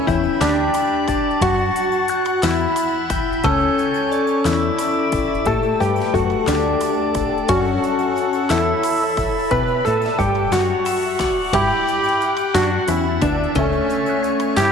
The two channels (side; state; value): both; normal; correlation 0.62